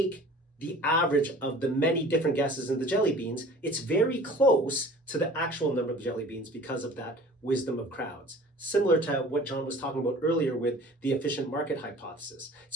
the average of the many different guesses in the jelly beans, it's very close to the actual number of jelly beans because of that wisdom of crowds. Similar to what John was talking about earlier with the efficient market hypothesis.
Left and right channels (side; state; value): both; normal; correlation 0.45